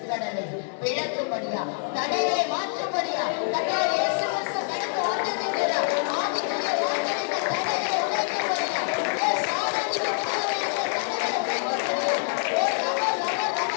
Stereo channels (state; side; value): silent; right; digital silence